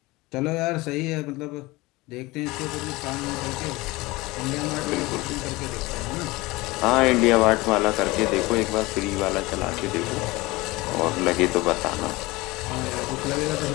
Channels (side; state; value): right; quieter; 21.6 dB